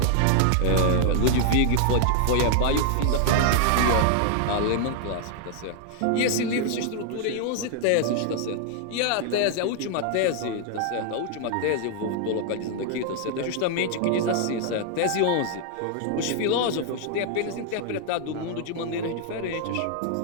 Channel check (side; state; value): both; different; correlation 0.00